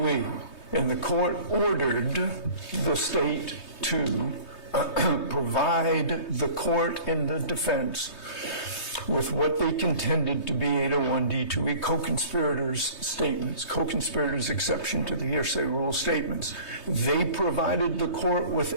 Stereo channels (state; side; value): late; right; 3.2 ms